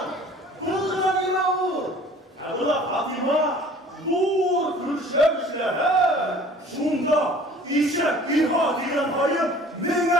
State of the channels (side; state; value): both; normal; correlation 0.49